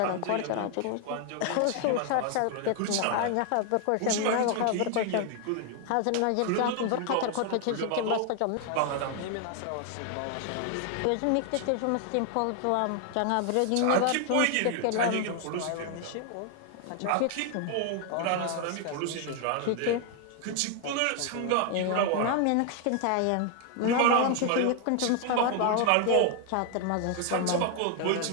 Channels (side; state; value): both; different; correlation 0.00